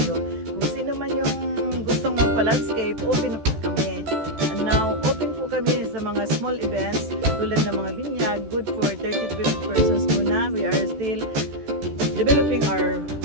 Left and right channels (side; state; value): left; late; 14 ms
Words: Kung sino man yung gustong magpa-landscape, open po kami. And now, open po kami sa mga small events tulad ng mga binyag. Good for 30 to 50 persons muna. We are still developing our